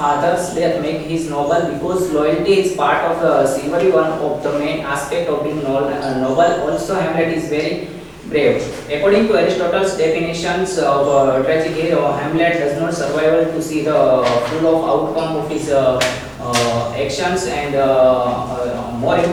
death make his noble because loyalty is part of the chivalry, one of the main aspect of being noble. Also, Hamlet is very brave. According to Aristotle's definitions of tragic hero, Hamlet does not survive to see the full of outcome of his actions, and more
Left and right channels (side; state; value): both; identical; correlation 1.00